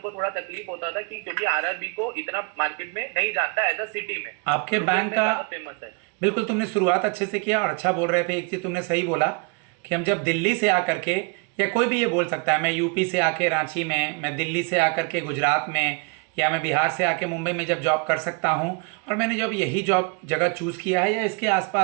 थोड़ा तकलीफ होता था कि क्योंकि RRB को इतना मार्केट में नहीं जानता एज अ सिटी में। आपके बैंक का फेमस है। बिल्कुल, तुमने शुरुआत अच्छे से किया और अच्छा बोल रहे थे। एक चीज़ तुमने सही बोला कि हम जब दिल्ली से आकर के, या कोई भी ये बोल सकता है, मैं यूपी से आके रांची में, मैं दिल्ली से आकर के गुजरात में, या मैं बिहार से आके मुंबई में जब जॉब कर सकता हूँ, और मैंने जब यही जॉब जगह चूज़ किया है या इसके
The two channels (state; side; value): quieter; left; 34.0 dB